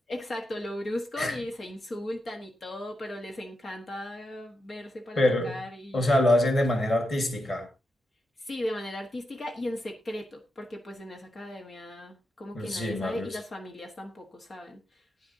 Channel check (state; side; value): normal; both; correlation 0.86